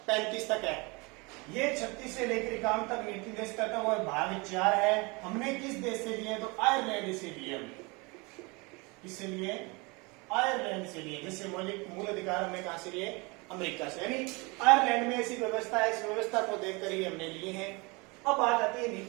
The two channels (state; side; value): quieter; left; 27.3 dB